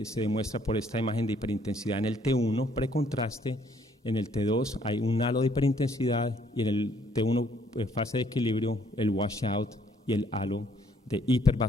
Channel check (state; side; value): normal; both; correlation 0.65